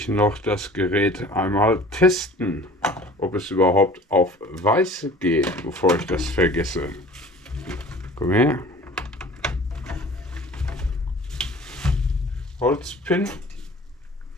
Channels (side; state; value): both; normal; correlation 0.45